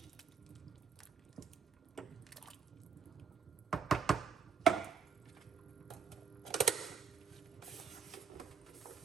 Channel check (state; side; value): quieter; left; 6.5 dB